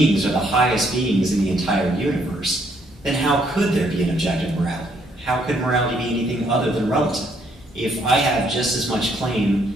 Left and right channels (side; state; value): both; normal; correlation 0.69